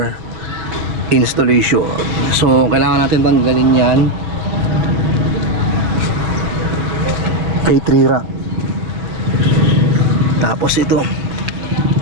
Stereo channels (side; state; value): left; late; 6.0 ms